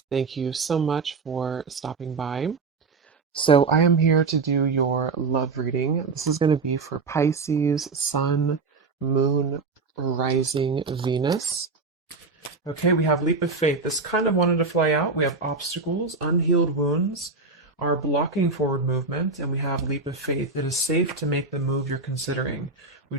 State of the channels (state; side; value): quieter; left; 4.1 dB